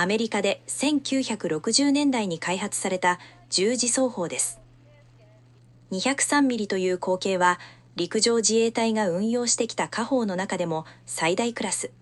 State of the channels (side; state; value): both; identical; correlation 1.00